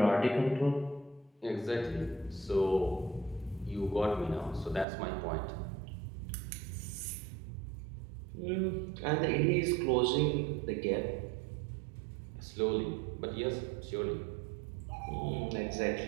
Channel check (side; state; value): left; drops out; at 4.9 s